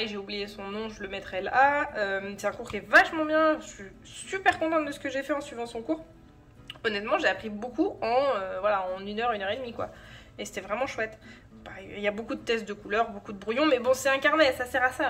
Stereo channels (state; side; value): identical; both; correlation 1.00